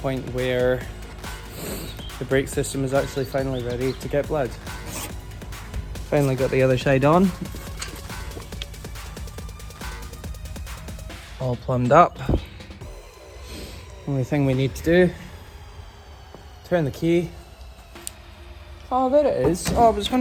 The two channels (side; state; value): both; identical; correlation 1.00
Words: where the brake system is actually finally ready to get blood. Finally got the other side on. All plumbed up. Only thing we need to do, turn the key. Oh, there it is. Oh, I was